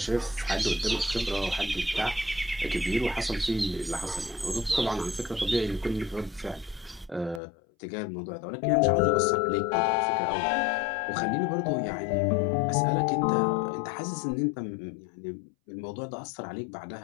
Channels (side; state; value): right; drops out; at 7.4 s